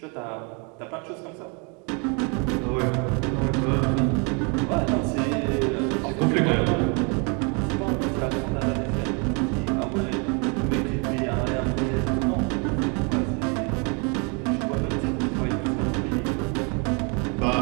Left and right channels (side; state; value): left; quieter; 34.3 dB